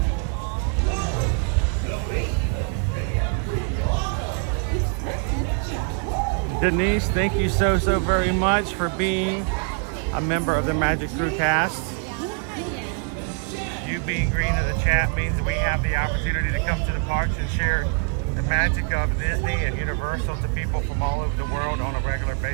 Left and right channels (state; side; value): quieter; left; 39.4 dB